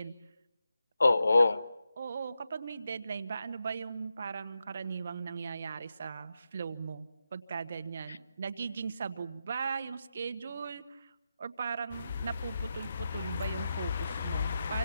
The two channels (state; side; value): inverted; both; correlation -0.87